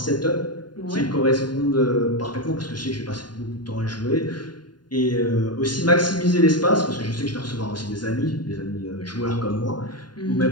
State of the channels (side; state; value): right; late; 0.70 ms